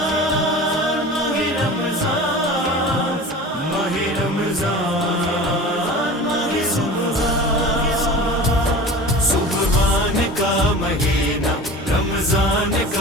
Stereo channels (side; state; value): both; normal; correlation 0.36